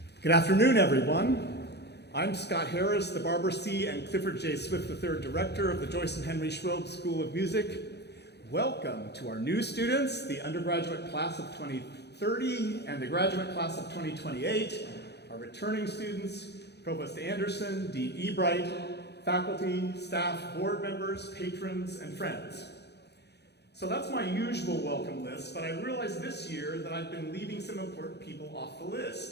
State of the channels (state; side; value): late; right; 0.49 ms